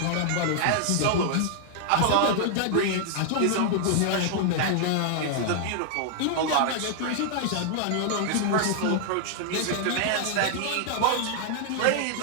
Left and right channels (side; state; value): both; different; correlation -0.01